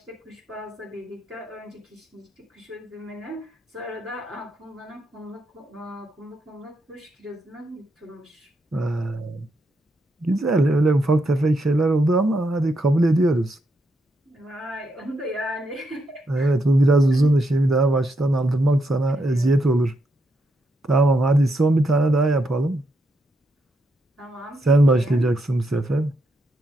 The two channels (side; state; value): both; normal; correlation 0.80